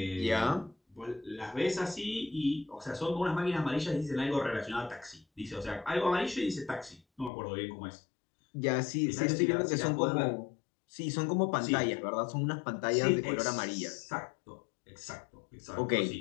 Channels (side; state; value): right; drops out; at 7.3 s